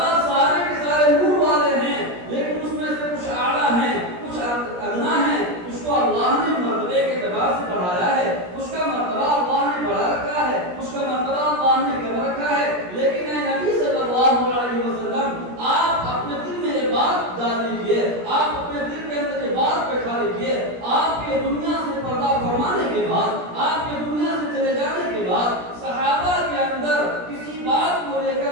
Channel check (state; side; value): late; left; 17 ms